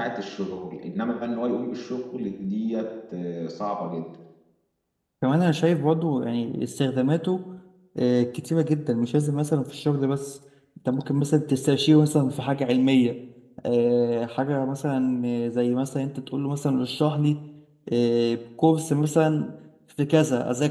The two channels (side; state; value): both; identical; correlation 1.00